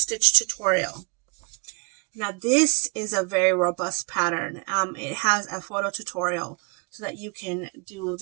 Tutorial. Now, this is a very robust pattern. It has a photo tutorial so that you can do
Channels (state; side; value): quieter; left; 32.5 dB